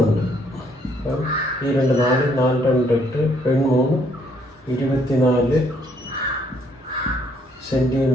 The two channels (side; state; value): both; normal; correlation 0.68